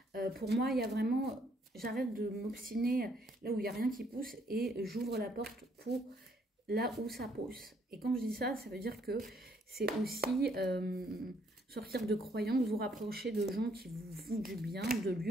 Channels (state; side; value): normal; both; correlation 0.68